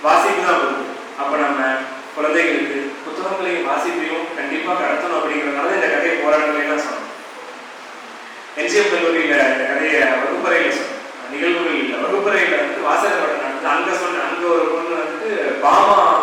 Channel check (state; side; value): identical; both; correlation 1.00